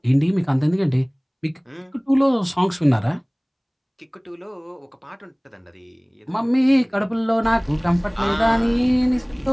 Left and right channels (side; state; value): both; identical; correlation 1.00